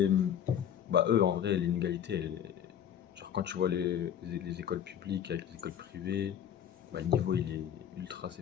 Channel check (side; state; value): right; quieter; 9.4 dB